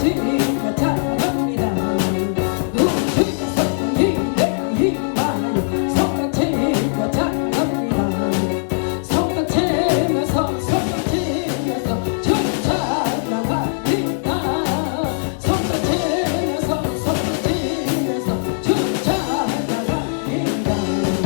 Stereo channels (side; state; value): right; silent; digital silence